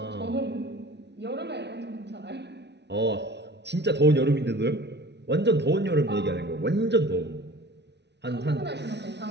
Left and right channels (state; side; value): late; left; 0.50 ms